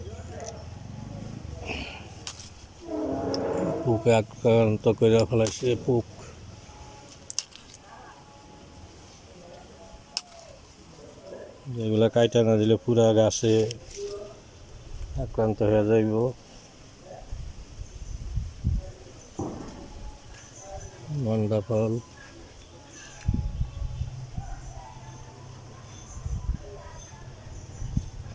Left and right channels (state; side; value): identical; both; correlation 1.00